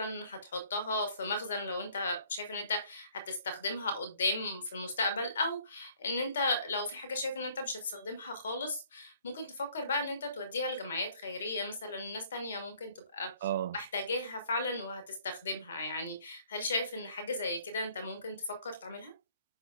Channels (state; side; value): inverted; both; correlation -0.60